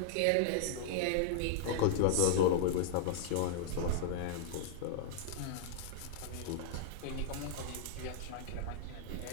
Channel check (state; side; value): different; both; correlation -0.01